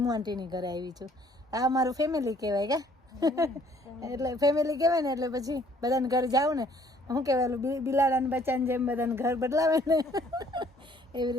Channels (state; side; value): normal; both; correlation 0.60